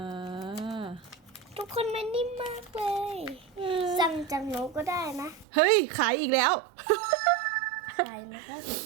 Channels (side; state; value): left; drops out; at 5.5 s